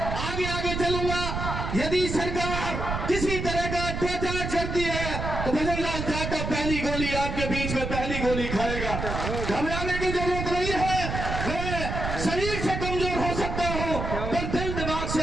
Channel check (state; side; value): noise; right; rumble, 4 dB below the sound